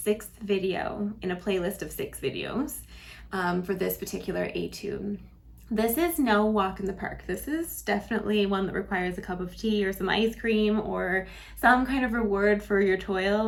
video in a playlist of 6 videos for this particular etude. This is no walk in the park. This is definitely one that requires a cup of tea or some ice cream or some kind of reward for your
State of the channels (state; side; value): identical; both; correlation 1.00